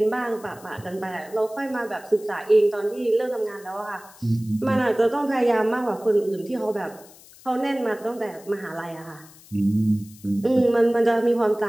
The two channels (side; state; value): left; noise; hiss, 23 dB below the sound